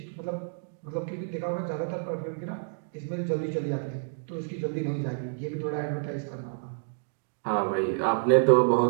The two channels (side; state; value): left; silent; digital silence